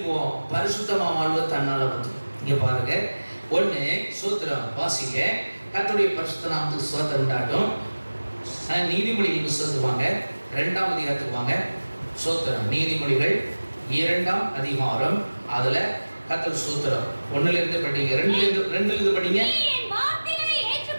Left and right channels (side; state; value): both; inverted; correlation -1.00